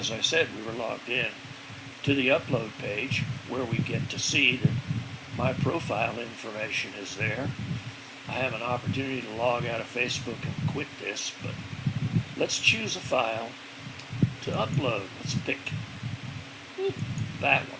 I said, we were logged in, to the upload page where we get to see that my profile information is there. I have an opportunity to log out of Facebook and quit this, but let's choose a file to upload. Let's pick that one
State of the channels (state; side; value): identical; both; correlation 1.00